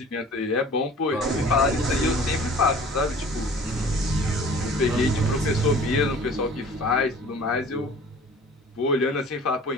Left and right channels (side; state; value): both; normal; correlation 0.47